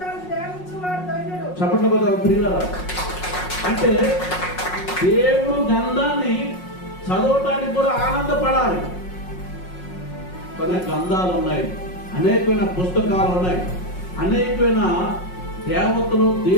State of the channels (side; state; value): right; late; 5.5 ms